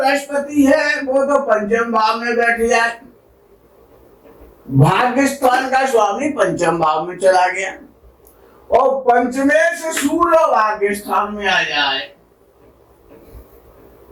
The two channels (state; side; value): identical; both; correlation 1.00